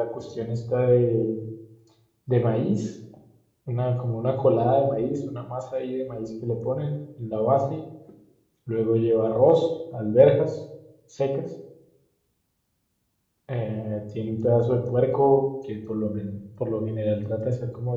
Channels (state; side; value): identical; both; correlation 1.00